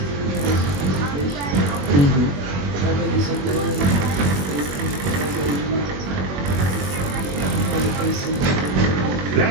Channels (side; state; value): left; late; 21 ms